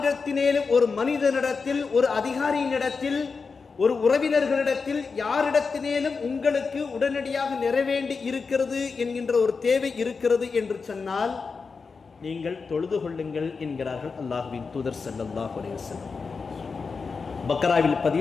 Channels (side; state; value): right; quieter; 4.9 dB